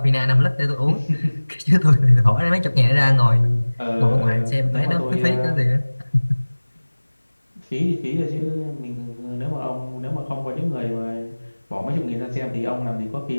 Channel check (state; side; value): inverted; both; correlation -1.00